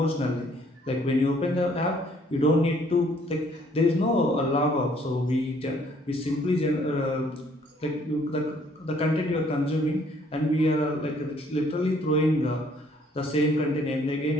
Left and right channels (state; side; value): normal; both; correlation 0.62